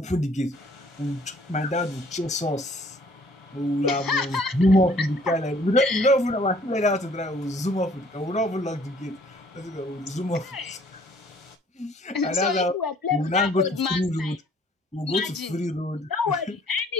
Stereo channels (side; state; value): both; normal; correlation 0.58